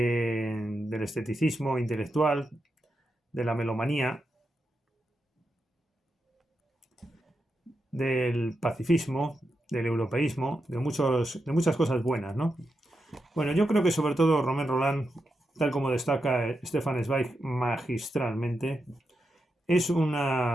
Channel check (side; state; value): both; normal; correlation 0.87